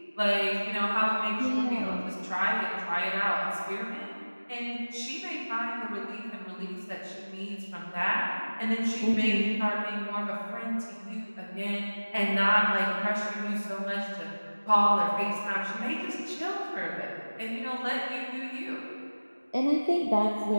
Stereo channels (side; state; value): both; inverted; correlation -1.00